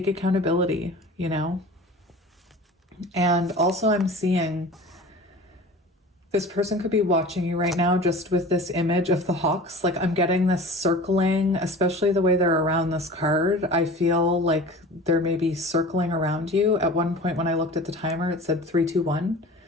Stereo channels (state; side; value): normal; both; correlation 0.39